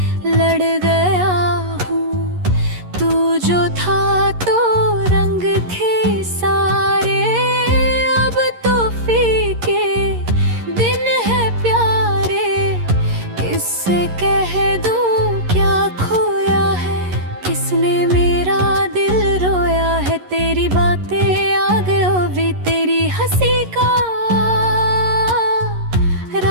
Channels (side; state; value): left; late; 11 ms